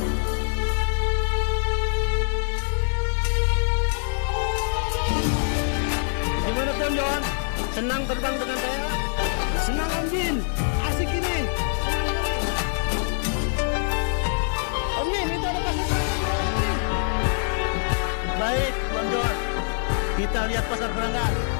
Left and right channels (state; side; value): silent; right; digital silence